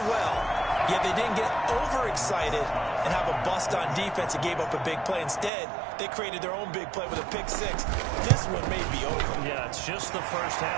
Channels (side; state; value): left; drops out; at 5.5 s